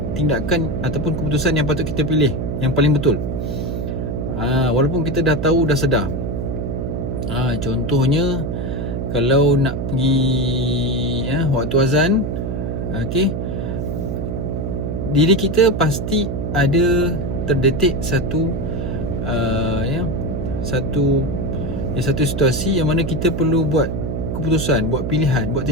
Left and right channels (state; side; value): noise; right; hum, 3 dB below the sound